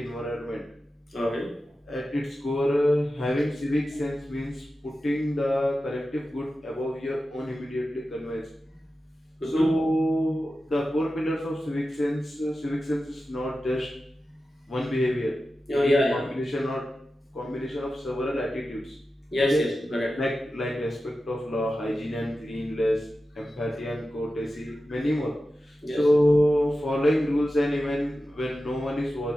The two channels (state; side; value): normal; both; correlation 0.93